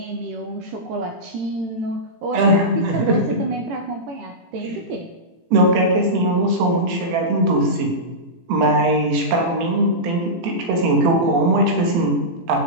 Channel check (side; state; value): left; late; 18 ms